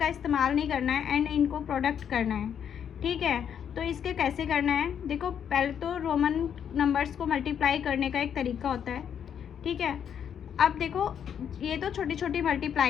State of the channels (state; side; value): quieter; right; 8.4 dB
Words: इस्तेमाल नहीं करना है एंड इनको प्रोडक्ट करना है। ठीक है, तो इसके कैसे करना है, देखो पहले तो रोमन नंबर्स को मल्टीप्लाई करने का एक तरीका होता है। ठीक है, अब देखो ये तो छोटी छोटी